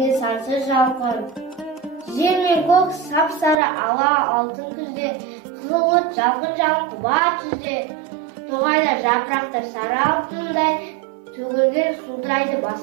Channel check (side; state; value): left; drops out; at 3.6 s